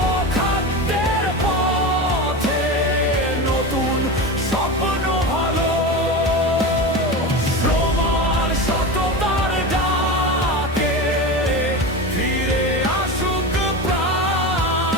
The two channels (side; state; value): both; normal; correlation 0.24